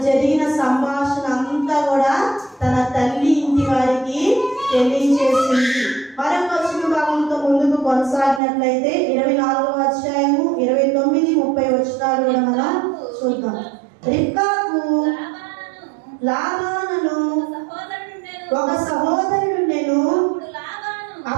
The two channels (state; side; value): drops out; left; at 8.4 s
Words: జరిగిన సంభాషణ అంతా కూడా తన తల్లి ఇంటి వారికి తెలియజేసింది. మరొక వచ్చిన భాగంతో ముందుకు కొనసాగినట్లయితే 24వ అధ్యాయము 29, 30 వచనాలు కూడా మనం చూద్దాం. రిబ్కాకు లాబానును ఒక సహోదరుడుండెను.